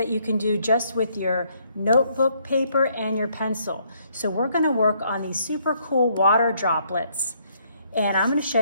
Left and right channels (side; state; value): both; inverted; correlation -0.69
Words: you can do just with your notebook paper and your pencil. So we're going to work on these super cool water droplets, and I'm going to show